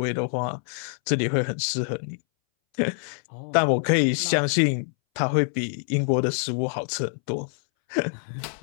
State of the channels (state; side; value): silent; right; 61 dB below the other